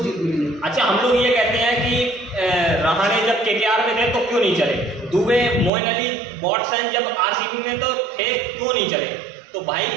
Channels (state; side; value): drops out; left; at 5.7 s